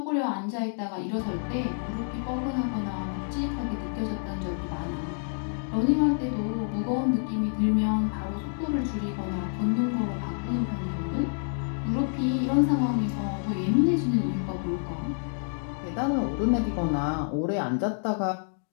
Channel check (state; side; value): silent; right; digital silence